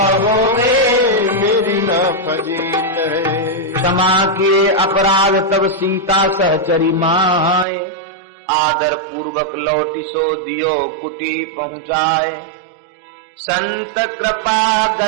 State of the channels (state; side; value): drops out; left; at 7.7 s